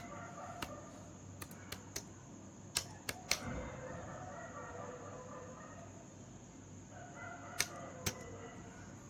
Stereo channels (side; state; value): both; identical; correlation 1.00